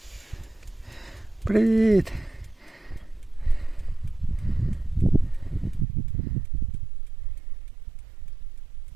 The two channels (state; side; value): drops out; left; at 5.9 s